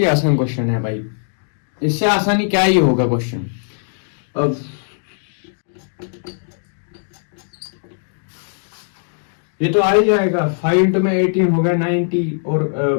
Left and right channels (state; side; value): silent; right; digital silence